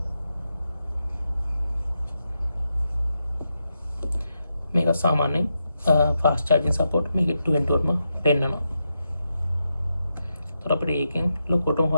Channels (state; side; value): inverted; both; correlation -0.86